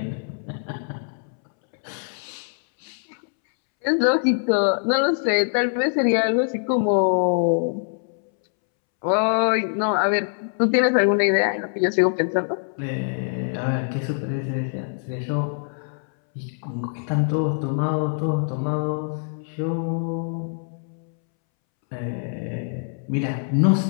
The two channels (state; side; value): silent; right; 63 dB below the other